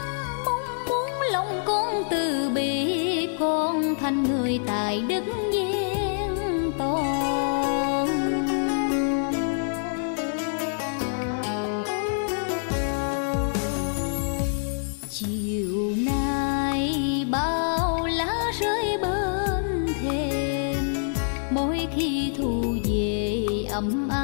Mong muốn lòng con từ bi, con thành người tài đức viên to. thu về ấm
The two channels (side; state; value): right; silent; 61 dB below the other